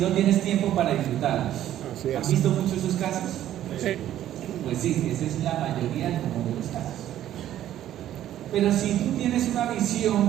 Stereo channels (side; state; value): left; quieter; 12.2 dB